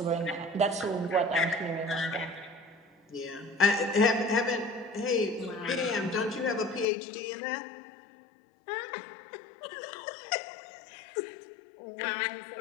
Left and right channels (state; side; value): drops out; right; at 6.9 s